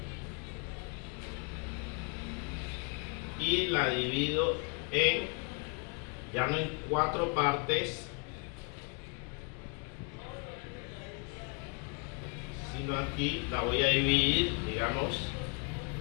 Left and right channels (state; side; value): quieter; right; 35.7 dB